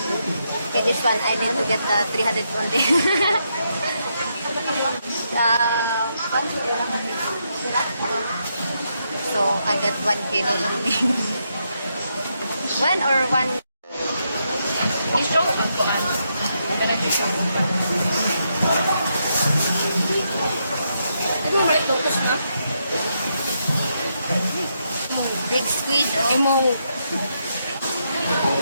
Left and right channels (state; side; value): inverted; both; correlation -0.80